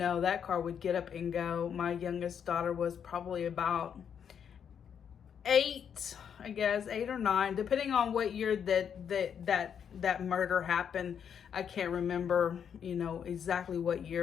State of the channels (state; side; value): quieter; right; 7.9 dB